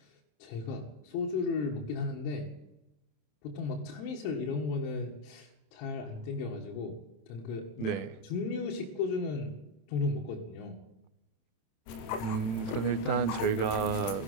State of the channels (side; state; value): right; late; 27 ms